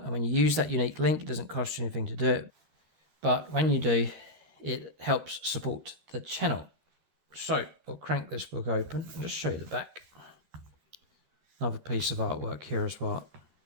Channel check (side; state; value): left; late; 13 ms